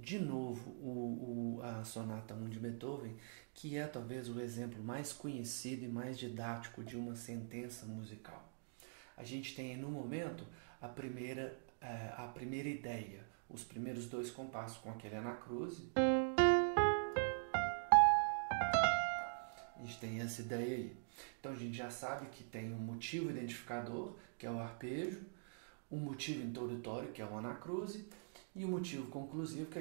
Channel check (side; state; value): left; silent; digital silence